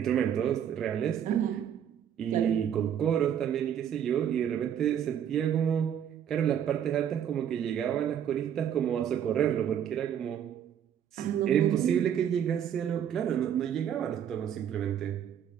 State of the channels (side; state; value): left; quieter; 9.3 dB